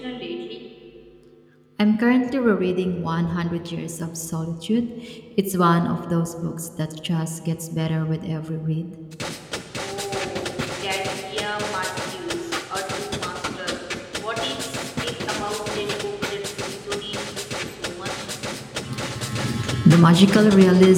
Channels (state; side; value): identical; both; correlation 1.00